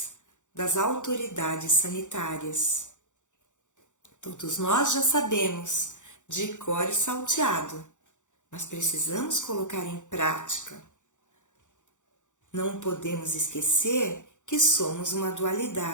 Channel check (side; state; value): right; late; 0.85 ms